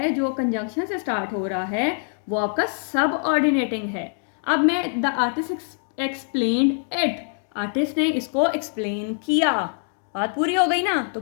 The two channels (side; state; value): right; silent; 59 dB below the other